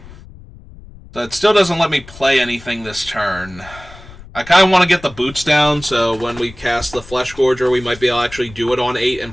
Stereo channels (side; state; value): left; noise; rumble, 19 dB below the sound